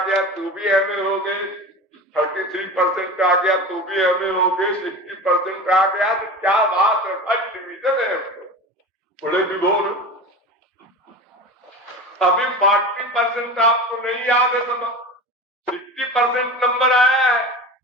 तो भी एमए हो गए, 33% आ गया तो भी एमए हो गए, 60% आ गया तो क्या बात है, फर्स्ट डिवीजन है बड़े विभोर। अभी 40% आपको नहीं याद है, तो 60% नंबर आया है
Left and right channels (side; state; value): both; normal; correlation 0.31